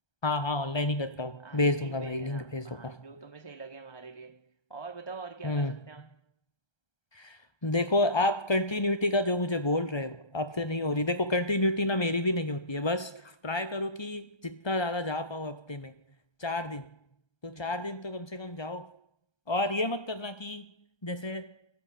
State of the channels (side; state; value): right; late; 1.3 ms